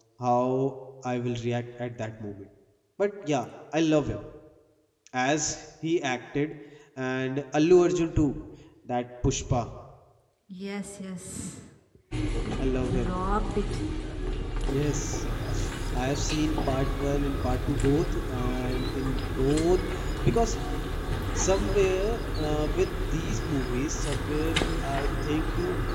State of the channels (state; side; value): identical; both; correlation 1.00